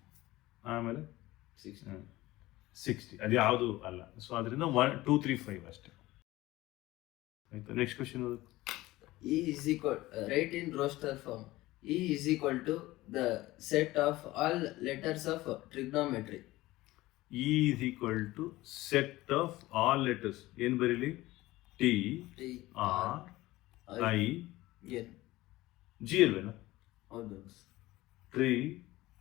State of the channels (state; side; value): quieter; right; 18.1 dB